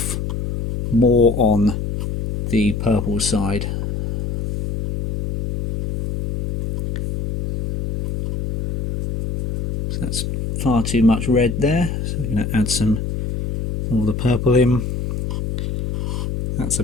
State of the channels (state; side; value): noise; left; hum, 3 dB below the sound